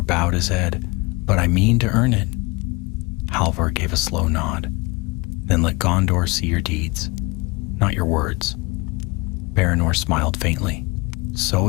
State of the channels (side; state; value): right; quieter; 25.7 dB